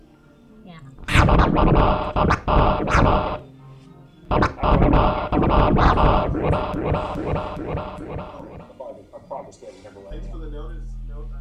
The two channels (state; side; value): identical; both; correlation 1.00